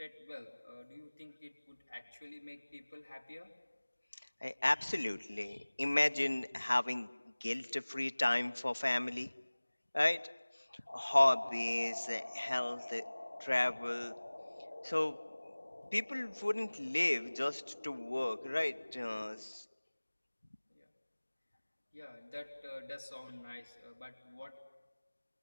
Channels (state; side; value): inverted; both; correlation -1.00